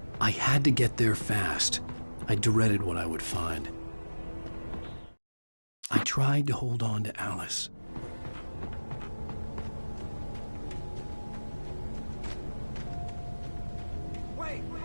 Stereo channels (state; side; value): inverted; both; correlation -1.00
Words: I had to get there fast. I dreaded what I would find. I tried to hold on to Alice. Wait!